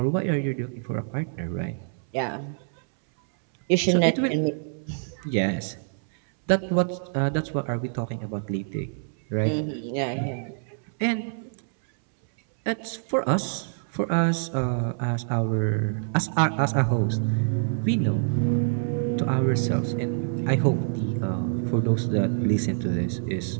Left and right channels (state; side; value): silent; left; 61 dB below the other